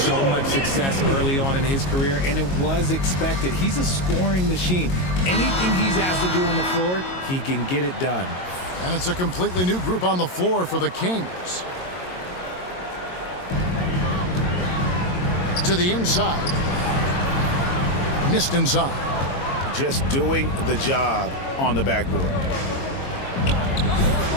much success early on in his career, and it was expected. He's a scoring machine. Anything he's asked to do on the floor, he can get it done. And it's a completely new group on the floor for the Kings. To the inside. Missed inside. Just doing the job on the backboard.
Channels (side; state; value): right; late; 22 ms